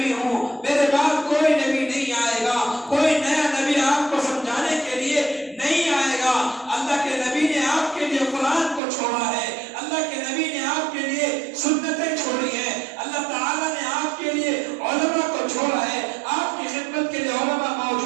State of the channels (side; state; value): left; drops out; at 8.8 s